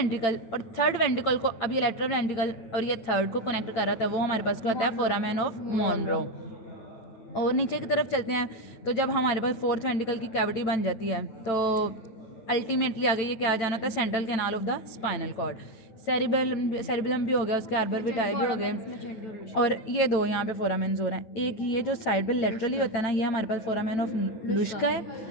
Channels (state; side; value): late; right; 8.9 ms